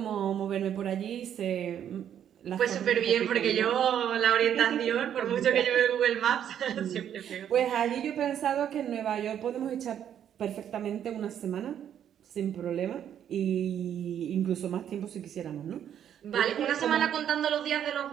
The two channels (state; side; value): quieter; left; 9.6 dB